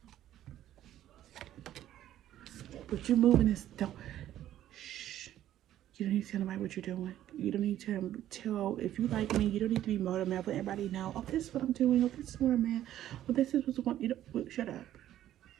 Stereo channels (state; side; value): quieter; left; 12.4 dB